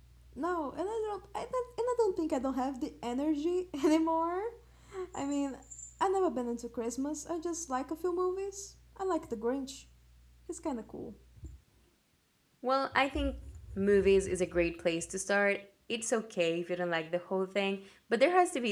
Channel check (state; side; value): identical; both; correlation 1.00